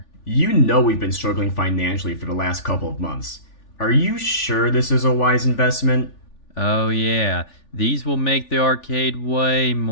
You know we've been struggling financially for the last couple of months. Are you sure this is a wise investment? Oh, yeah, these will make the arcade way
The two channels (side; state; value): right; late; 3.4 ms